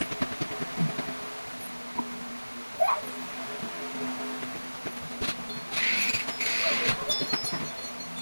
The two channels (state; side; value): inverted; both; correlation -1.00